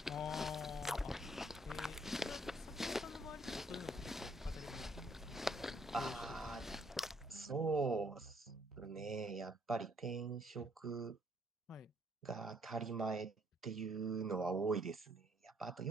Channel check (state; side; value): normal; both; correlation 0.67